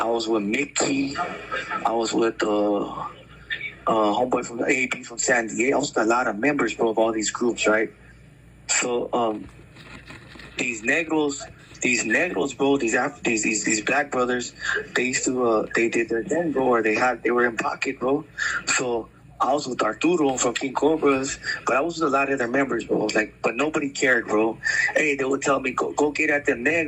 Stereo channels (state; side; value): identical; both; correlation 1.00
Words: was with Mickey. I was with homeboy from the AB from San Diego. I was with a lot of members, bro, of all these groups, right? So these negros, bro, these black brothers, they used to they did their thing, bro, or they were in pocket, bro. So I was with Arturo from King Cobras, but I was with a lot of their members, bro. Like, but nobody cared, bro. Hey, they would tell me go get at them